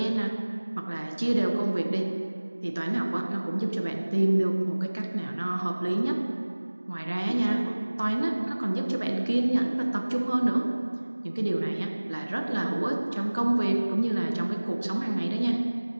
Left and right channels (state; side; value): inverted; both; correlation -1.00